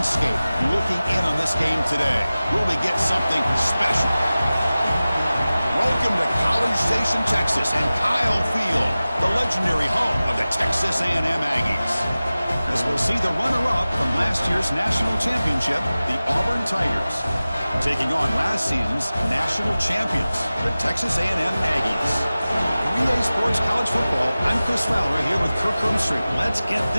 looking in on this game today. Will they get something special? Welcome to College Station, Texas, and Kyle Field, the legendary home of the Texas A&M Aggies. As we'll see the runner-up from last year's national championship, the Auburn Tigers, taking on last season's national champions, the Texas A&M Aggies. 3A Sports College Football, I'm Chris Fowler here with Kirk Hermstreet. Let's get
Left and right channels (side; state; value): both; inverted; correlation -0.97